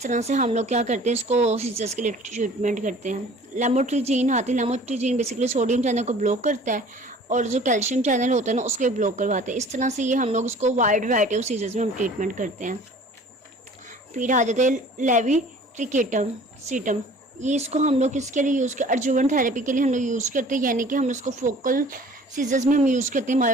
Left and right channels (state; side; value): normal; both; correlation 0.48